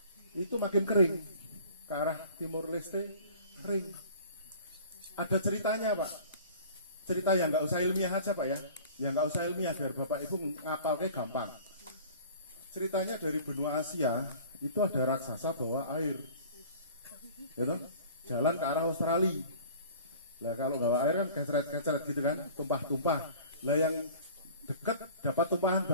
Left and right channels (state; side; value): inverted; both; correlation -0.45